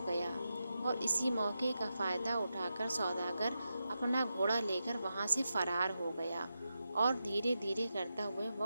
گیا۔ اور اسی موقع کا فائدہ اٹھا کر سوداگر اپنا گھوڑا لے کر وہاں سے فرار ہو گیا، اور دھیرے دھیرے کرتا ہوا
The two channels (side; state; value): both; inverted; correlation -0.89